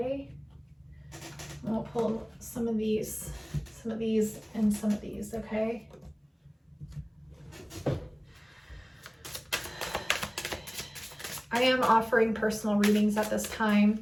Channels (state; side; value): identical; both; correlation 1.00